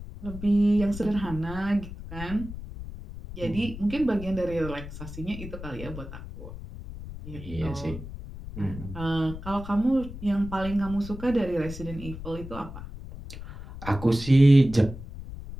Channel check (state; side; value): noise; left; rumble, 11 dB below the sound